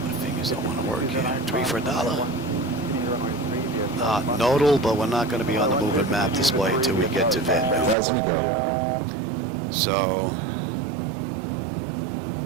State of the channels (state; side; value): drops out; left; at 8.0 s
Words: My fingers don't want to work here. 3 for $1. Nodal, but we're not going to be on the moving map display until we get to vet. As we go. So,